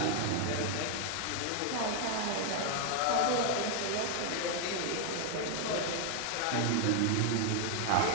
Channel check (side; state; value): both; different; correlation 0.00